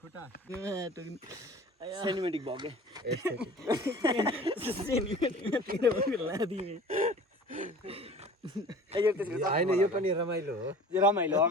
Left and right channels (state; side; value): normal; both; correlation 0.43